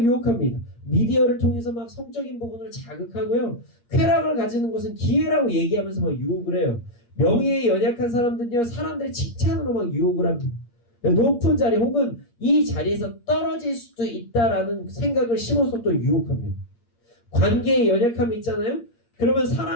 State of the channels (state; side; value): late; right; 8.5 ms